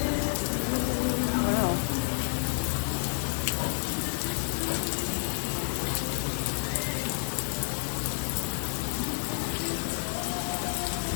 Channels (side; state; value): right; silent; digital silence